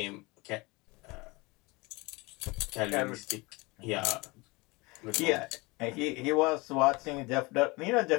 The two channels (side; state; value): right; quieter; 24.8 dB